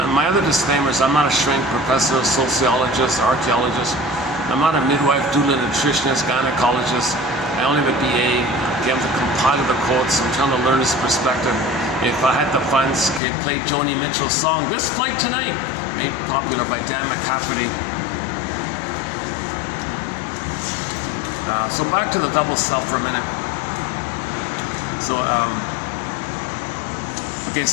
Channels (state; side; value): drops out; right; at 13.2 s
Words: My other disclaimers: I'm not a shrink professor, sociologist, archaeologist. I'm not a midwife, doula, nutritionist, gynecologist. I only have a BA. I'm the compiler of the quotes. I'm trying to learn this perspective. If I had the funds, could play Joni Mitchell's song "This Flight Tonight," made popular by Dan McCafferty. So back to the double self for a minute. So,